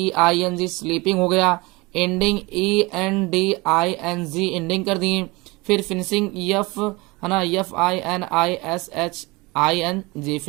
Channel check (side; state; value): left; quieter; 24.0 dB